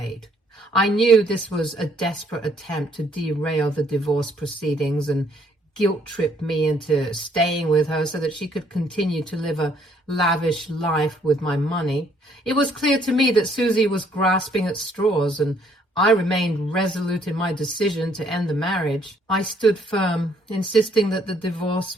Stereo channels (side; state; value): both; normal; correlation 0.66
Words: I knew this was a desperate attempt to derail the divorce proceedings and guilt-trip me into staying with her so that she could continue to live a lavish life with my money. It was clear to me that Susie was grasping at straws, and I remained resolute in my decision to end the marriage. I stood firm, insisting that the divorce